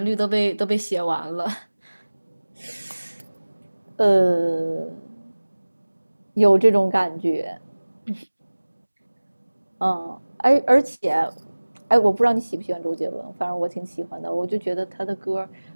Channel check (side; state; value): both; inverted; correlation -1.00